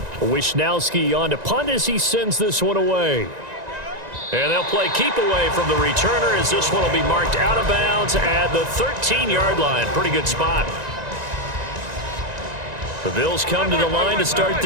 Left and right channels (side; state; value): left; late; 1.9 ms